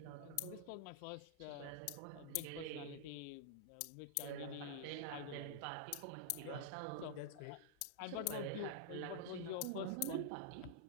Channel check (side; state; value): both; different; correlation -0.01